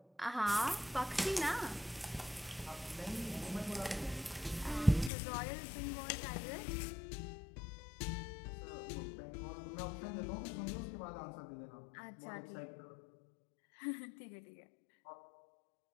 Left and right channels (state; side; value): drops out; right; at 5.1 s